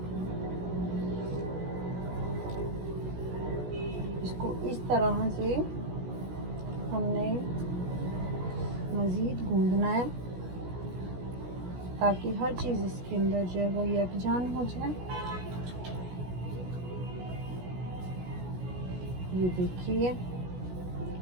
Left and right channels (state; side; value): late; left; 16 ms